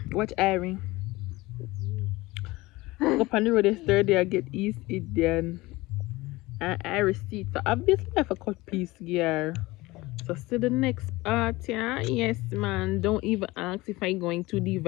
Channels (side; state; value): right; quieter; 20.6 dB